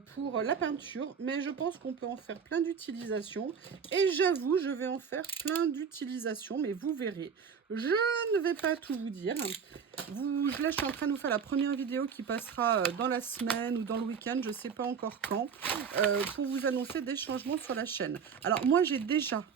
pour la peinture, mais je pense qu'on peut en faire plein d'utilisations. Et j'avoue, je vais en faire plein d'utilisations, mais vous verrez. Je ne vais pas tout vous dire. Là, je suis en train de vous faire la première vidéo qui passera dans la semaine ou dans le week-end, je ne sais pas encore quand, pour vous annoncer des changements sur la chaîne. Alors, moi, j'ai déjà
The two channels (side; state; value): left; quieter; 6.6 dB